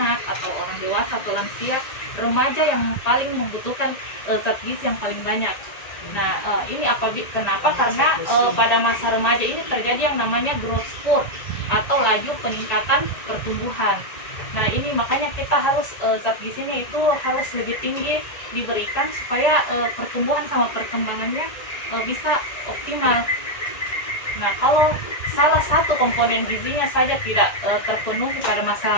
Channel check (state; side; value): late; right; 1.9 ms